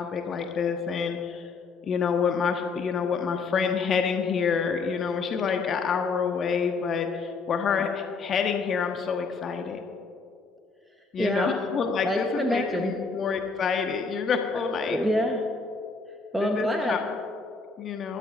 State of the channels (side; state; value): right; quieter; 4.5 dB